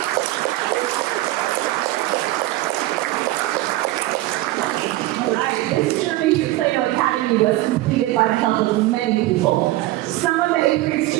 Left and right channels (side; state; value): left; quieter; 17.3 dB